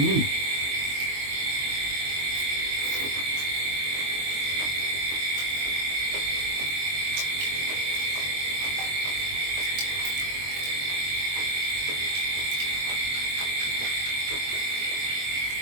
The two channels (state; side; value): late; left; 22 ms